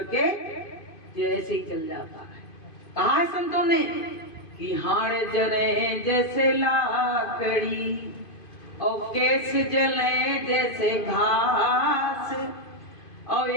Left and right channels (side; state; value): right; late; 2.5 ms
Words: ये ऐसे ही जल जाता है। कहा है संतों ने कि हाड़ जले जैसे लाकड़ी और केस जले जैसे घास, और